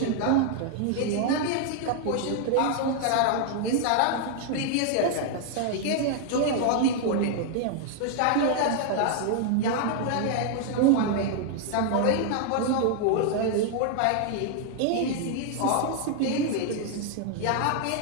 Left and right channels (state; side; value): different; both; correlation 0.00